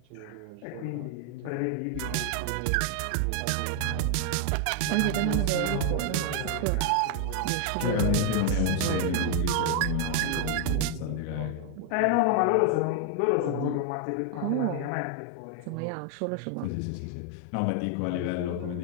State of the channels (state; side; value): different; both; correlation 0.00